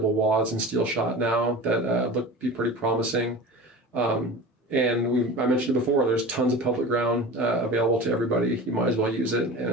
wads and steel shot now that look be pretty promising. And I mentioned it before, there's tons of public ground available to everybody. You might as well use it, and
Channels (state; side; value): normal; both; correlation 0.34